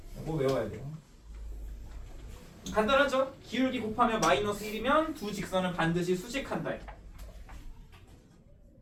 이거 외워야 돼요. 간단하죠? 기울기 곱하면 마이너스 1이면 두 직선은 반드시 수직한다.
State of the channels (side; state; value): both; identical; correlation 1.00